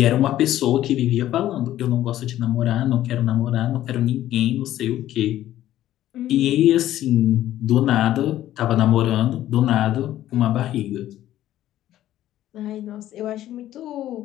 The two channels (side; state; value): right; quieter; 13.2 dB